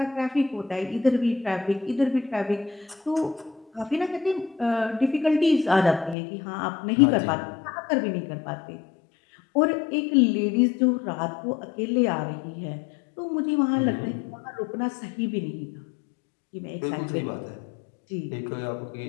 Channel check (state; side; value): drops out; right; at 6.2 s